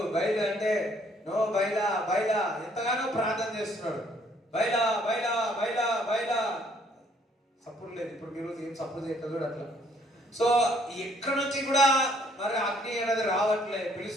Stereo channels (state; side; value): normal; both; correlation 0.64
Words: బయలు అంటే నో బయలా బయలా ఎంతగానో ప్రార్థన చేస్తున్నాడు. బయలా బయలా బయలా బయలా సప్పుడు లేదు. ఇప్పుడు మీరు ఏం సప్పుడు చేయట్లేదు అట్లా. సో ఎక్కడి నుంచి కూడా మరి అగ్ని అనేది రావట్లే.